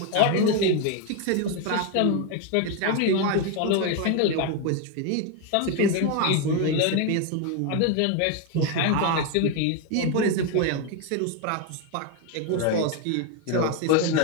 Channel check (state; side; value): different; both; correlation 0.02